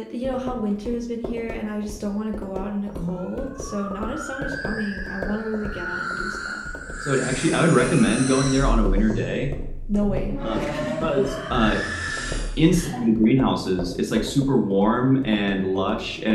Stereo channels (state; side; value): identical; both; correlation 1.00